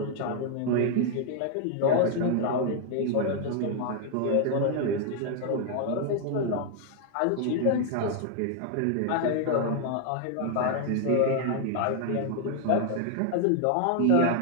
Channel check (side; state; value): both; different; correlation 0.00